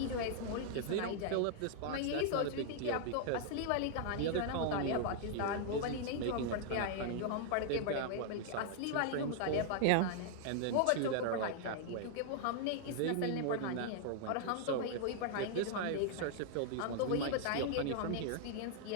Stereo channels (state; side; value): different; both; correlation -0.01